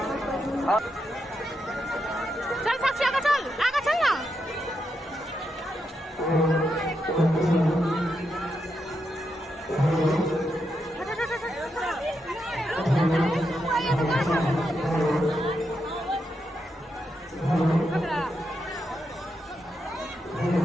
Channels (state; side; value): normal; both; correlation 0.83